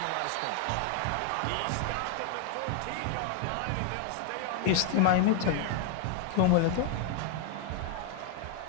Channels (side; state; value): both; different; correlation 0.00